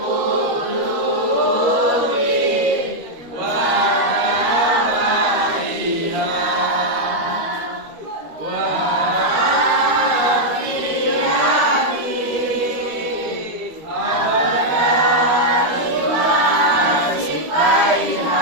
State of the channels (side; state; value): left; late; 13 ms